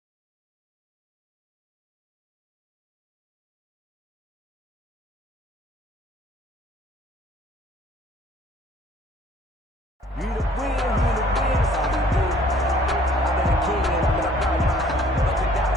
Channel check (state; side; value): normal; both; correlation 0.57